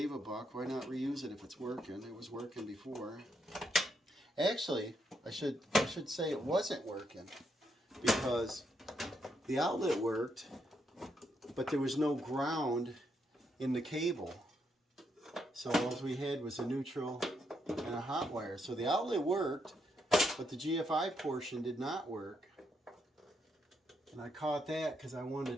a buck, why not reuse it if it's working? It was working before. Actually, I should say it wasn't working, because the outlet worked, but there was no ground in the cable. So all we had was a neutral and a hot wire. So the outlet worked, but the GFI portion did not work. And I caught that because I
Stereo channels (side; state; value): both; normal; correlation 0.78